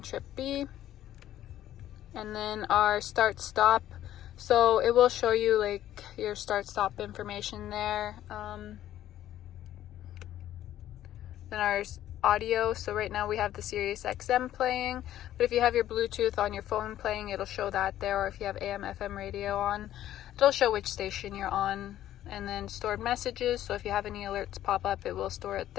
trip B. And then our start stop. So it will show you like your start stop information there. Then our audio. So right now we have the Sirius XM playing, but if you have your Bluetooth on your phone playing, it'll show that there. Or if you have AM FM radio on, it'll show which station you're on. And then stored messages. So if you have any alerts pop up, it will store it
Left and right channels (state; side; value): quieter; right; 12.6 dB